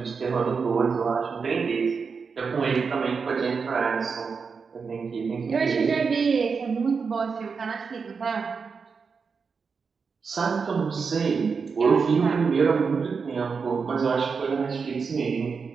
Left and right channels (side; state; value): left; quieter; 5.4 dB